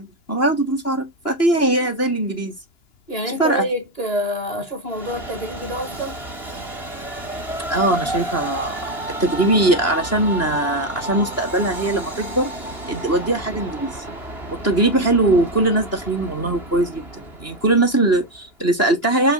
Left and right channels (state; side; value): late; right; 2.9 ms